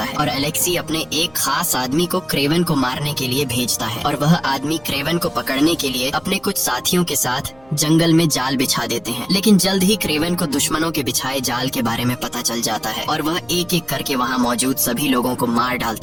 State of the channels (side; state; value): right; noise; hum, 29 dB below the sound